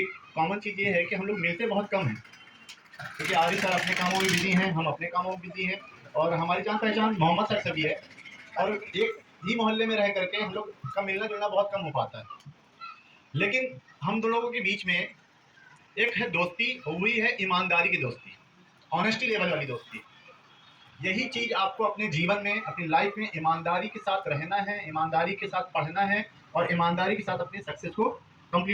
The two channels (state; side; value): identical; both; correlation 1.00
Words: कॉमन चीज़ ये है कि हम लोग मिलते बहुत कम हैं, क्योंकि आरिफ सर अपने कामों में बिजी हैं, हम अपने कामों में बिजी हैं, और हमारी जान पहचान मोहम्मद सर से भी है, और एक ही मोहल्ले में रह करके हम लोग का मिलना जुलना बहुत कम हो पाता है। लेकिन हम दोनों लोगों के बीच में एक है दोस्ती, हुई है ईमानदारी की दोस्ती, ऑनेस्टी लेवल वाली दोस्ती। यही चीज़ आपको अपने जीवन में, अपनी लाइफ में ईमानदारी के साथ रहना है, ईमानदारी के साथ पढ़ना है, और ईमानदारी के साथ अपनी सक्सेस को